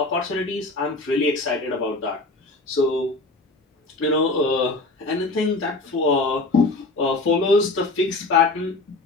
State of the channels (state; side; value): quieter; right; 3.1 dB